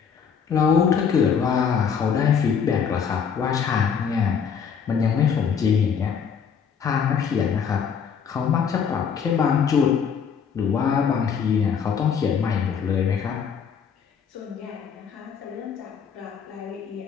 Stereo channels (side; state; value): right; quieter; 6.9 dB